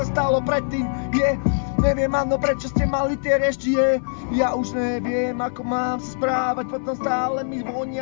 stalo predtým, neviem, áno, prečo ste mali tie rešti, ja už neviem, ako mám sa správať, potom stále mi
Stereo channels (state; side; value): silent; right; 64 dB below the other